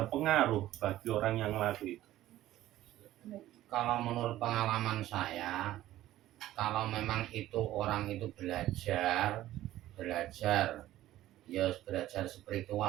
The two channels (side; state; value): left; quieter; 14.4 dB